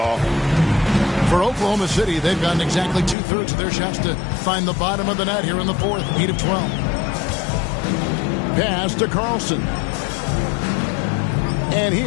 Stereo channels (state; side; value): drops out; right; at 3.2 s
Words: For Oklahoma City, they've gotten exactly 2/3 of their shots to find the bottom of the net here in the fourth. 8 of 12. Pass to Carlson. And